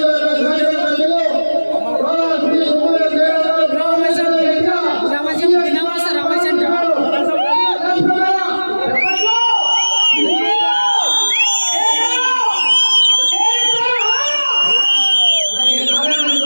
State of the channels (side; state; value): both; inverted; correlation -1.00